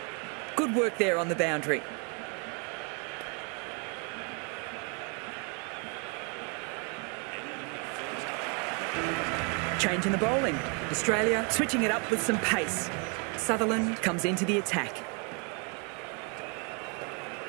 Good work there on the boundary. Change in the bowling. Australia switching it up with some pace. Sutherland comes into the attack.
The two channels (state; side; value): quieter; left; 35.5 dB